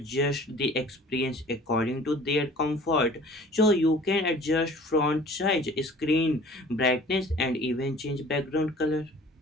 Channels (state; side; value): normal; both; correlation 0.48